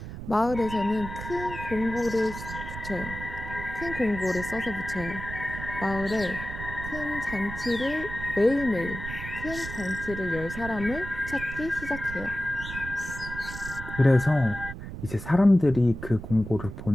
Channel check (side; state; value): right; noise; rumble, 9 dB below the sound